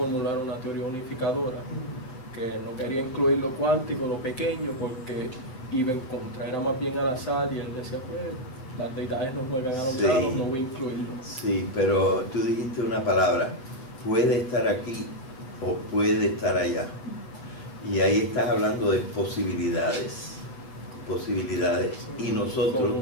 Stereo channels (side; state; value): right; late; 7.8 ms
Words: una teoría unificadora, que no quería incluir lo cuántico, lo pequeño, porque iba en contra, era más bien al azar, y él decía, pues las deidades no juegan a los dados, no voy a incluirlo. Sí, pero tú dijiste una palabra: puede estar aquí o puede estar allá. Y ahí estás hablando de posibilidades. Y nosotros